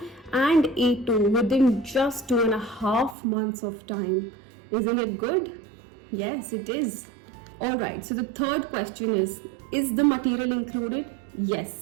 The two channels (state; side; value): drops out; left; at 3.2 s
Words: and A2, within just 2.5 months of time. Isn't it good? Yes, it is. Alright, so the third question is the material included? Yes,